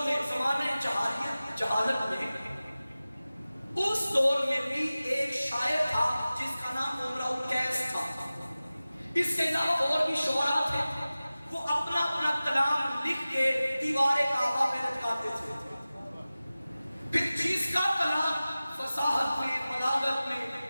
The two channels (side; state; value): both; inverted; correlation -0.97